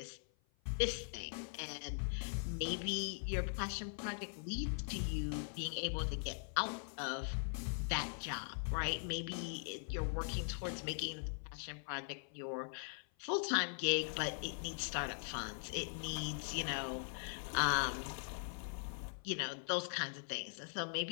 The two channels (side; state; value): right; silent; 50 dB below the other